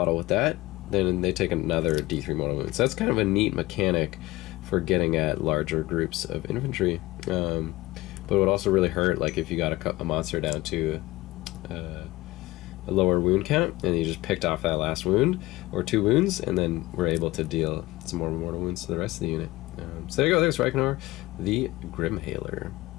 with that, then they take another D3 mortal wounds. So that's kind of a neat mechanic for getting at larger groups of infantry. But it would also really hurt, like, if you got a monster down to a lower wound count, and you just picked off that last wound, or 2 wounds, and then were able to deal some more mortal wounds to the rest of the unit. So there you go, there's Reikenor, the Grimhaler.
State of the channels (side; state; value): right; quieter; 19.3 dB